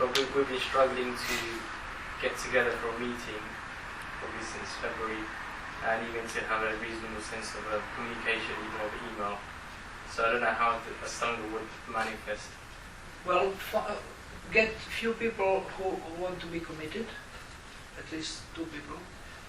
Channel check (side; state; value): both; identical; correlation 1.00